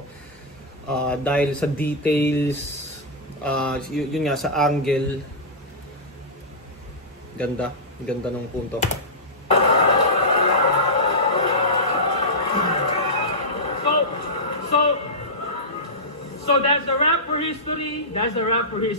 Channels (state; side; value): normal; both; correlation -0.12